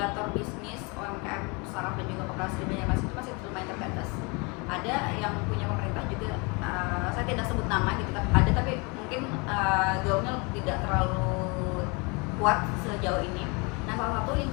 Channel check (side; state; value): right; quieter; 29.7 dB